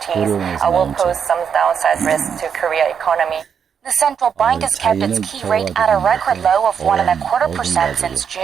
will pose some downside risks to Korea economy. The central bank has kept its key rate at a record low of 1.25% since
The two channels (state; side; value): quieter; left; 7.3 dB